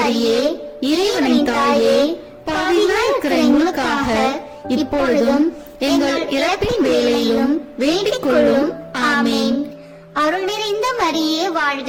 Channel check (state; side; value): identical; both; correlation 1.00